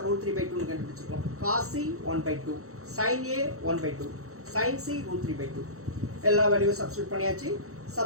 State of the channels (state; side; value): late; left; 0.64 ms